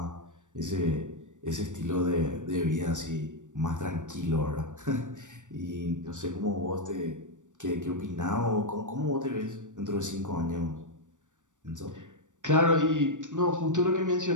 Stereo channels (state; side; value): late; left; 0.86 ms